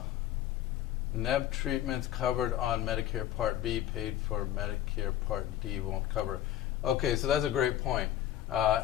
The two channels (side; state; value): right; quieter; 12.2 dB